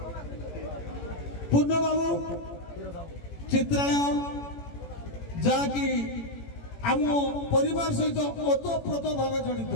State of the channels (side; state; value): right; late; 18 ms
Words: पूर्ण बाबू चित्रालय जहाँकि आम परिवार सहित ओतप्रोत भाव जड़ित